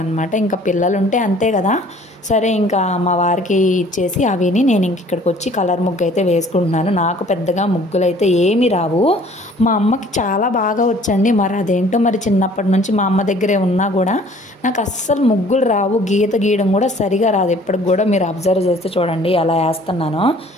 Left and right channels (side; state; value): both; normal; correlation 0.54